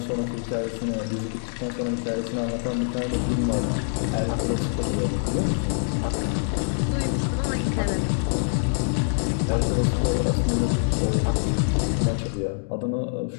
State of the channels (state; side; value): silent; right; digital silence